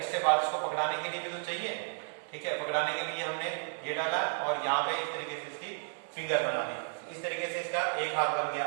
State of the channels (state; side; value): silent; left; 55 dB below the other